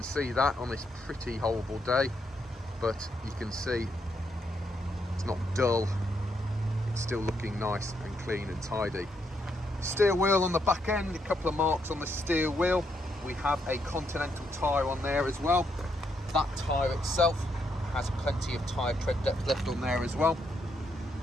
see that on this pretty horrible day, but you can see it's not dull. It's still looking nice and clean and tidy. Steel wheel on the back end, a couple of marks on the steel wheel. We have a Continental tyre on there as well. That tyre itself has plenty of tyre tread depth left on there as well.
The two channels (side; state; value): both; normal; correlation 0.77